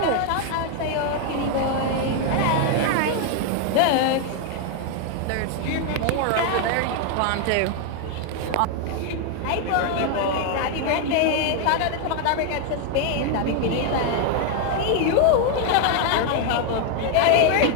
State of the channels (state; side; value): different; both; correlation 0.01